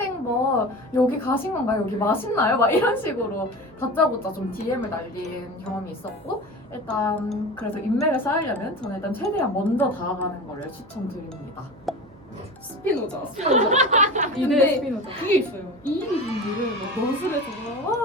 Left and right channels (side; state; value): right; noise; hum, 26 dB below the sound